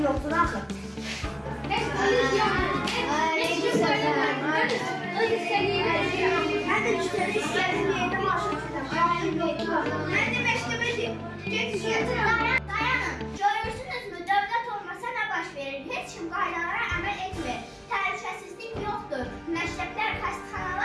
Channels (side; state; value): both; identical; correlation 1.00